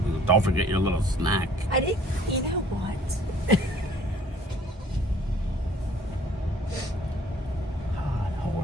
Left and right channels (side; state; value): both; normal; correlation 0.56